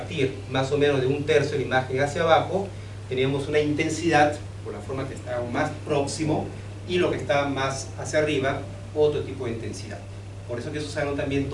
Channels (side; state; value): both; identical; correlation 1.00